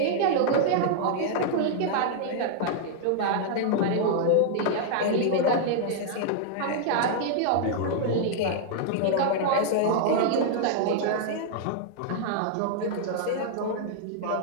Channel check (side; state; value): both; different; correlation -0.01